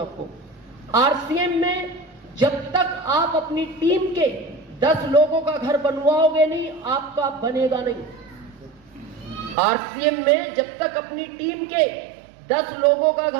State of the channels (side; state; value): left; drops out; at 9.6 s